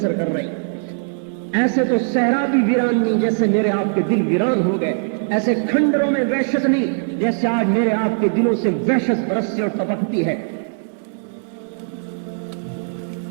کر رہی. ایسے تو صحرا بھی ویران نہیں جیسے میرے آپ کے دل ویران ہو گئے. ایسے کھنڈروں میں وحشت نہیں جیسے آج میرے آپ کے دلوں سے وحشت برستی اور تپکتی ہے.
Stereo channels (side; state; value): left; silent; digital silence